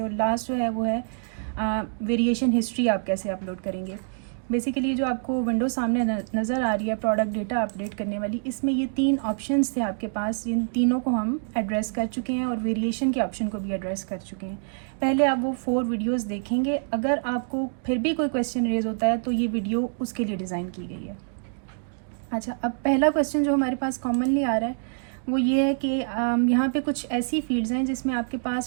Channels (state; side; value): silent; left; digital silence